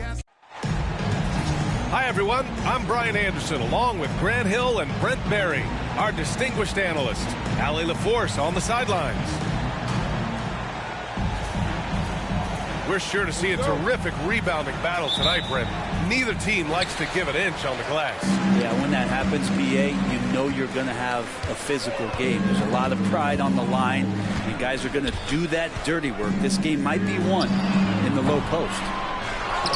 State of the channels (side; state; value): both; identical; correlation 1.00